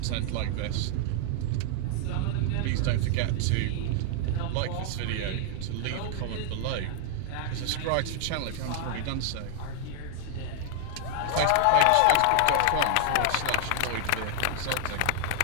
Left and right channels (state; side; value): different; both; correlation 0.00